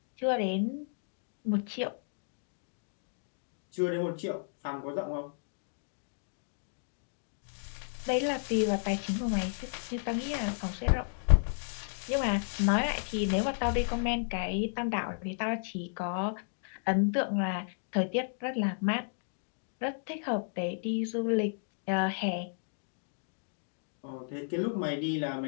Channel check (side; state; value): right; silent; digital silence